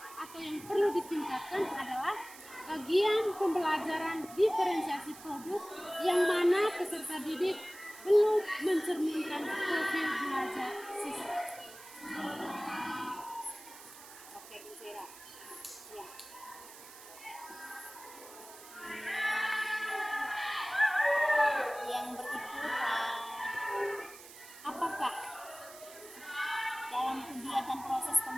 atau yang perlu ditingkatkan adalah bagian pembelajaran diferensiasi produk yang mana peserta didik belum mencerminkan profil belajar siswa. Oke, Bu Vera. Ya. Yang berikut, apakah dalam kegiatan proses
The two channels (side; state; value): right; noise; hiss, 17 dB below the sound